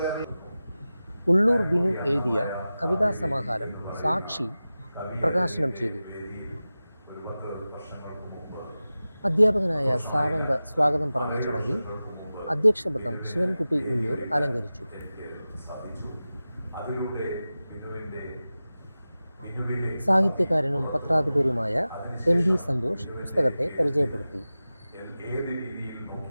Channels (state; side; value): inverted; both; correlation -0.95